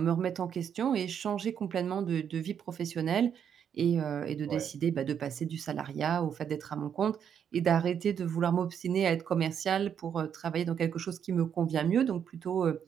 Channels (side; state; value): left; quieter; 8.2 dB